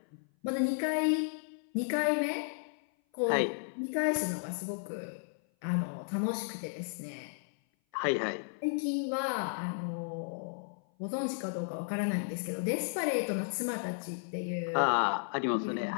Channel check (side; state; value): right; silent; 55 dB below the other